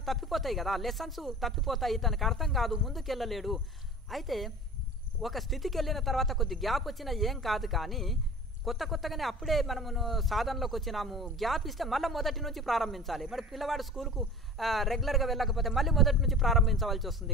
తప్పిపోతాయి కదా, లెసన్స్ తప్పిపోతాయి. తనకు అర్థం కాదు, ముందుకెళ్ళలేడు. అయితే ఒక స్థితికి వెళ్ళిన తర్వాత కొద్ది గ్యాప్ వచ్చినా ఏం కాదు. కానీ కొత్తగానే అప్పుడే మనము సాధనలోకి వచ్చినాము, గ్యాప్ ఇస్తే మళ్ళీ మొదటి నుంచి ప్రారంభించాలి. మరి పిల్లవాడు స్కూల్కు రెగ్యులర్గా వెళ్ళకపోతే మళ్ళీ మొదటి నుంచి ప్రారంభించవలసి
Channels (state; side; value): normal; both; correlation 0.39